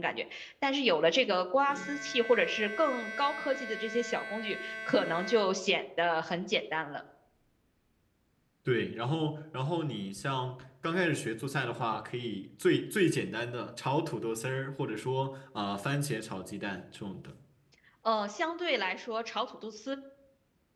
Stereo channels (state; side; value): identical; both; correlation 1.00